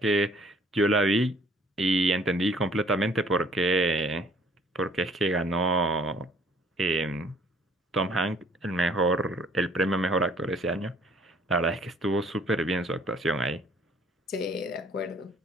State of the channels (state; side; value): normal; both; correlation 0.58